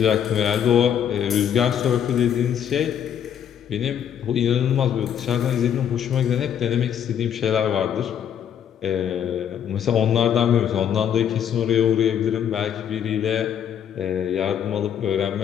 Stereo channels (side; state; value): right; quieter; 9.0 dB